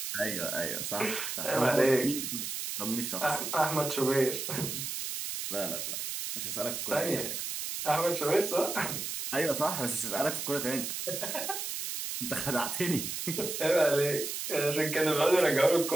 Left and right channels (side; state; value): right; noise; hiss, 4 dB below the sound